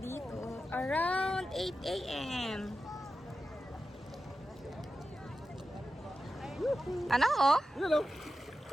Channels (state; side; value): normal; both; correlation 0.92